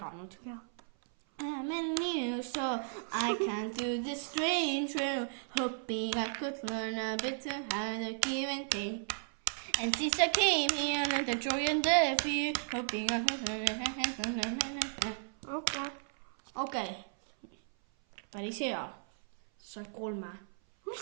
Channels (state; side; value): silent; left; 55 dB below the other